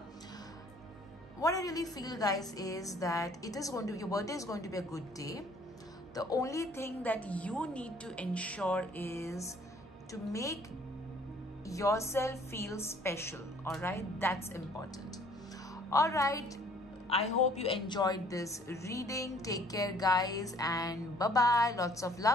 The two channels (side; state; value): both; normal; correlation 0.57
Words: What I really feel, guys, is that your birthday is going to be a good day. The only thing that you need to ensure is to make yourself feel special. All right, that's important. All right, I hope you enjoyed this reading. Take care, guys, and bye bye. Lots of